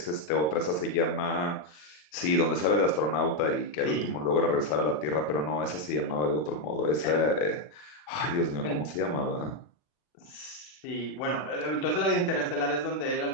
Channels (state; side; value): late; right; 40 ms